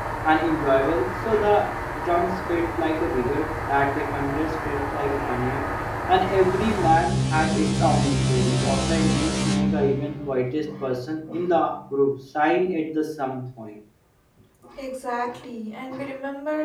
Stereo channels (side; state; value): both; identical; correlation 1.00